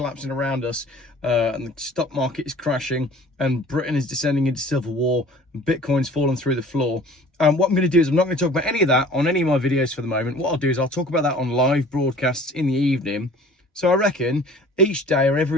around us and the stock market is crashing and Britain is descending into civil war and Bitcoin's fallen through the floor. What I'm going to do is I'm not going to talk about any of that on any of my videos for the moment. What I'll do is I'll talk about that on live broadcasts in the evening. So I reckon each day or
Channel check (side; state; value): both; normal; correlation 0.48